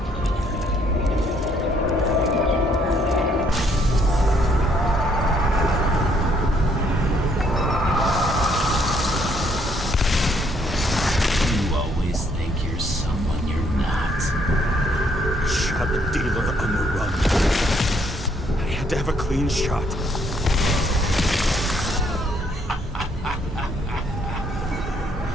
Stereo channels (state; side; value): normal; both; correlation 0.68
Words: To have a clean shot.